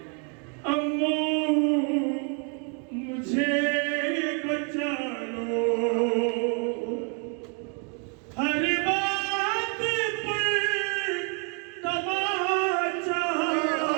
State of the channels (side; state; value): left; quieter; 38.3 dB